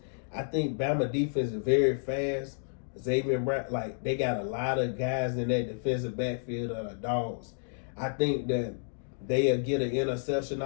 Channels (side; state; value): right; silent; digital silence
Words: I think Bama defense is very fast. Xavier Brown, like they got a lot of guys in that defensive backfield that are dogs. I think that they'll get an interception